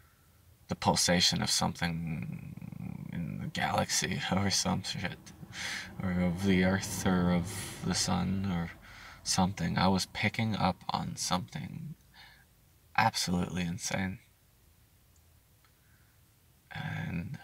the pulsation of something in the galaxy or some shit, or of the Earth or of the sun or something. I was picking up on something absolutely insane. And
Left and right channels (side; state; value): both; identical; correlation 1.00